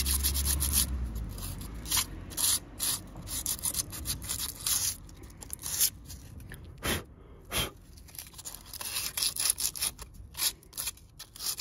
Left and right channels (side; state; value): both; identical; correlation 1.00